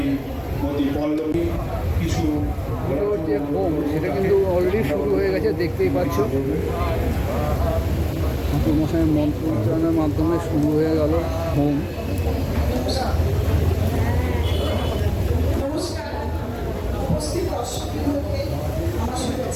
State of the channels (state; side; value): identical; both; correlation 1.00